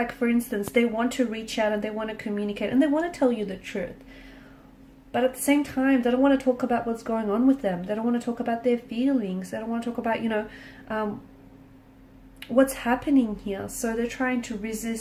for instance, they want to reach out and they want to communicate and they want to tell you the truth. But at the same time, they don't want to talk about what's going on with them. They don't want to talk about their feelings. They don't want to talk about, what's happening here. So they're trying to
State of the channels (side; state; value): both; identical; correlation 1.00